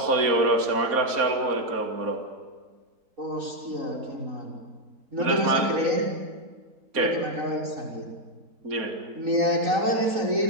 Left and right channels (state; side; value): late; left; 4.2 ms